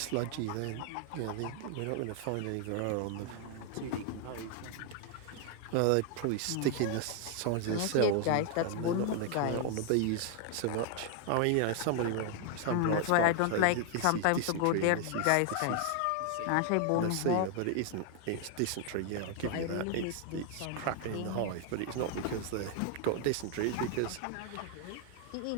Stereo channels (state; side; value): different; both; correlation 0.00